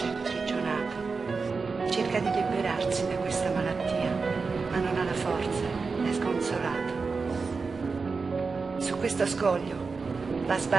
imprigionato. Cerca di liberarsi da questa malattia, ma non ha la forza, è sconsolato. Su questo scoglio va a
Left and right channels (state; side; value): quieter; left; 4.6 dB